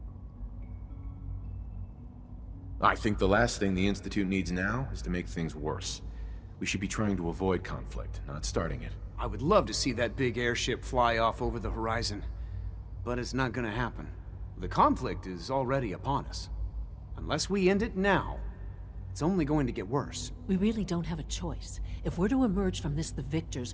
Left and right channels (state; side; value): identical; both; correlation 1.00